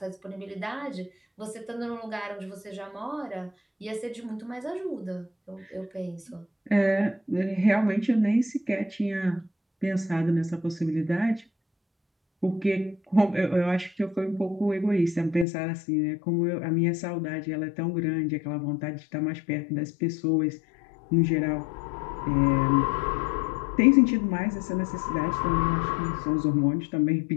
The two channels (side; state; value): right; drops out; at 15.5 s